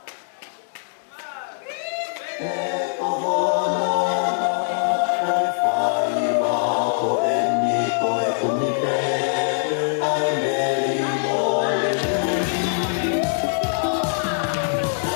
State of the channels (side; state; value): right; silent; digital silence